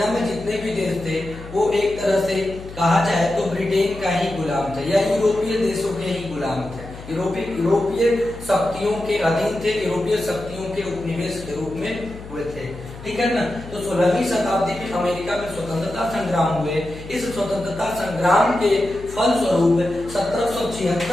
में जितने भी देश थे वो एक तरह से कहा जाए तो ब्रिटेन का ही गुलाम थे या यूरोपीय देशों के ही गुलाम थे। यूरोपीय शक्तियों के अधीन थे, यूरोपीय शक्तियों के उपनिवेश के रूप में हुए थे, ठीक है ना। तो 16वीं शताब्दी में अमेरिका में स्वतंत्रता संग्राम हुए। इस स्वतंत्रता संग्राम के फलस्वरूप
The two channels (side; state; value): left; noise; hum, 15 dB below the sound